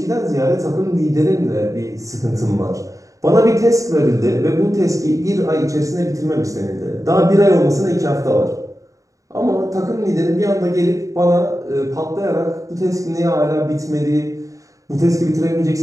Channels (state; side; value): late; left; 0.16 ms